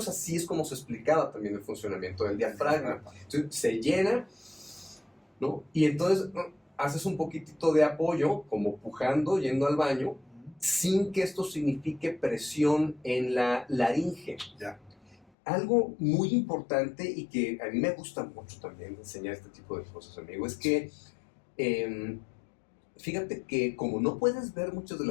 así es como se explicaba también el funcionamiento del diafragma. Entonces, se llena, ¿no? Y entonces haces un poquitito de apoyo, como pujando, yendo al baño, sin que esto signifique presión en la laringe. Ya. Algo muy importante y que a mí me gusta mucho también enseñar este tipo de cosas, amigo, es que fíjate que como no puedes ver muchas de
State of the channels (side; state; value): right; drops out; at 15.2 s